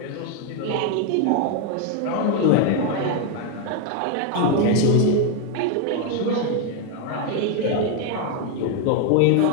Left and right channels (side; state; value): both; different; correlation 0.01